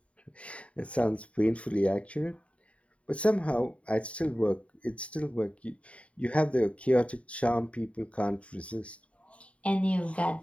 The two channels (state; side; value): late; right; 0.064 ms